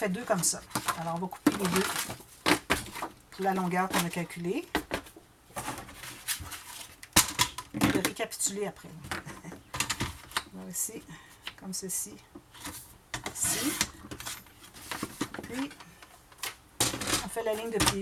2 comme ça. Alors, on va couper les 2 pour la longueur qu'on a calculée. Je vais récapituler après. Alors ici, comme ceci, ici. Puis, on fait la ligne de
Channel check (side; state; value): both; identical; correlation 1.00